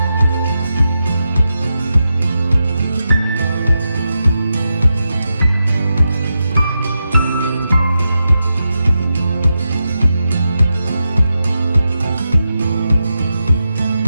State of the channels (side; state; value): both; inverted; correlation -0.88